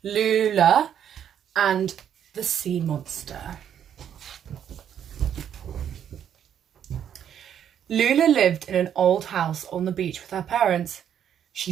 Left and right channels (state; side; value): quieter; left; 9.3 dB